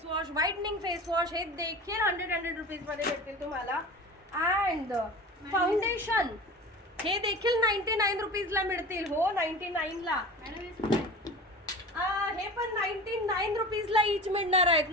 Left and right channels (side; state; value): both; normal; correlation 0.35